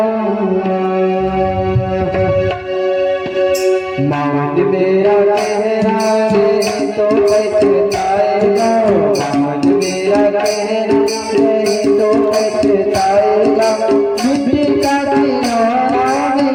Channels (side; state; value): both; identical; correlation 1.00